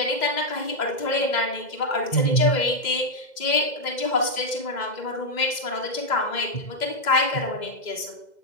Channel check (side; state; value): right; late; 2.0 ms